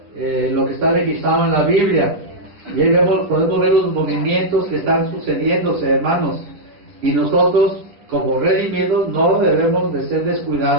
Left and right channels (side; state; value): left; late; 9.8 ms